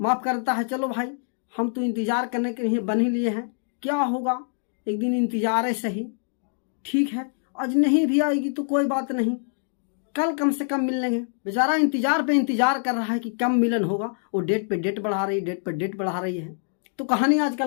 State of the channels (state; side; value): silent; right; digital silence